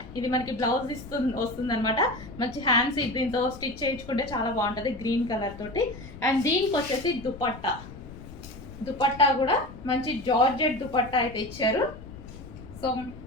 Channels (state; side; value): noise; left; rumble, 15 dB below the sound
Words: ఇది మనకి బ్లౌజ్ వస్తుంది అనమాట. మంచి హ్యాండ్స్ దీంతో స్టిచ్ చేయించుకుంటే చాలా బాగుంటుంది గ్రీన్ కలర్ తోటి. అండ్ దీనికి వచ్చేసి దుపట్టా కూడా మంచి జార్జెట్ దుపట్టా అయితే ఇచ్చారు. సో